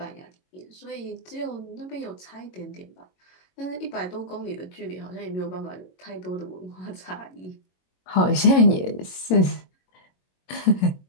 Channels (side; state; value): right; late; 22 ms